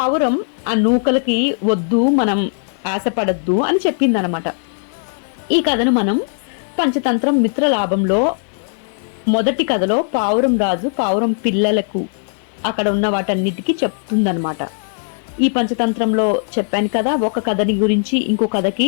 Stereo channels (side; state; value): right; silent; 67 dB below the other